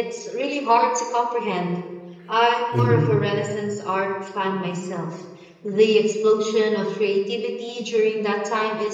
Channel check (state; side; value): identical; both; correlation 1.00